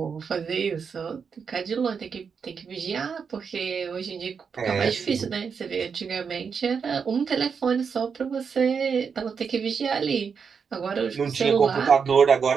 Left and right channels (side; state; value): left; quieter; 6.1 dB